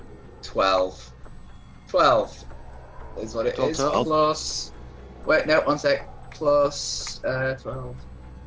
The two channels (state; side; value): identical; both; correlation 1.00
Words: 12. 12 is what it is. Plus... Wait, no, one sec. Plus 12.